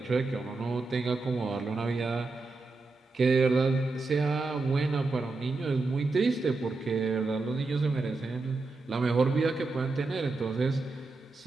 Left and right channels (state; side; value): quieter; left; 3.6 dB